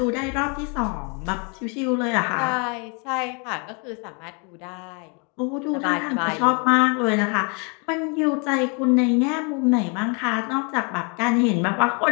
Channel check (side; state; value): right; quieter; 34.6 dB